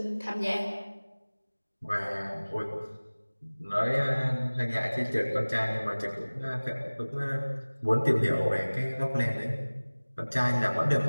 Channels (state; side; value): inverted; both; correlation -1.00